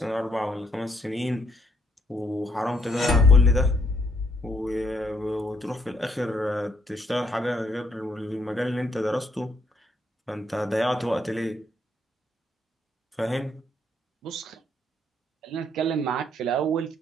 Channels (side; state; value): both; normal; correlation 0.71